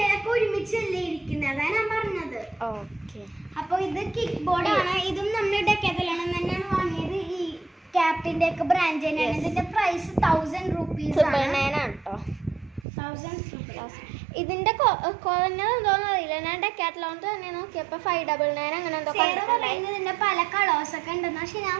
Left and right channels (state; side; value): drops out; left; at 12.9 s